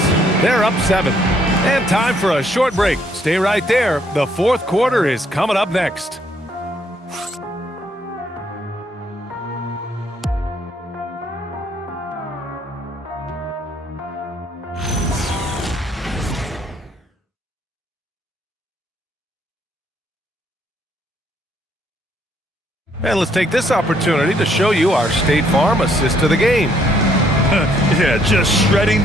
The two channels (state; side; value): normal; both; correlation 0.68